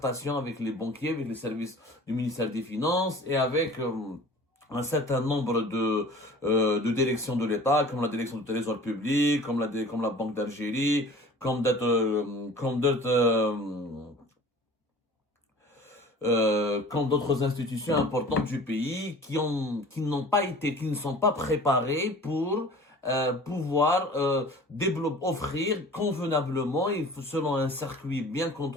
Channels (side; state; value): both; normal; correlation 0.44